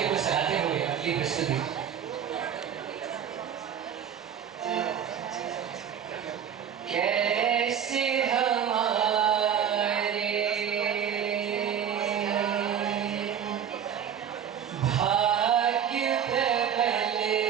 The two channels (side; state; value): left; quieter; 8.5 dB